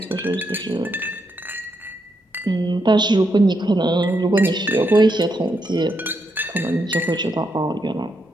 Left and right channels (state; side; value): normal; both; correlation 0.80